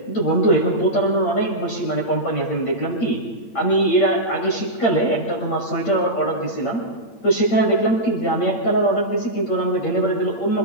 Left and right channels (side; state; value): right; late; 8.8 ms